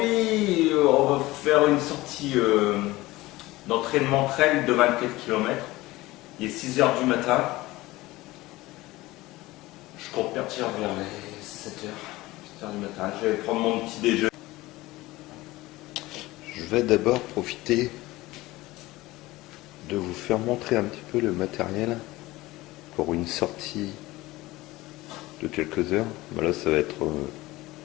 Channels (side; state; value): right; quieter; 19.1 dB